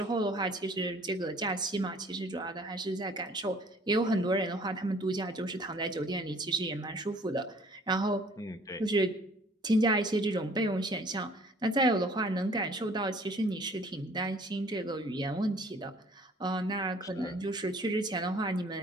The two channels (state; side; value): normal; both; correlation 0.55